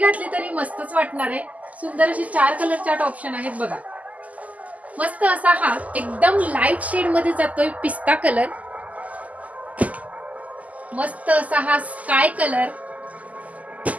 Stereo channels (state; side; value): late; left; 0.075 ms